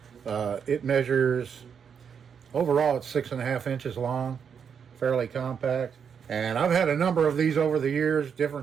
It measures, overall it's 6.5 inches long, fairly compact. And I've had a number of these over the years,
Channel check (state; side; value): quieter; left; 7.1 dB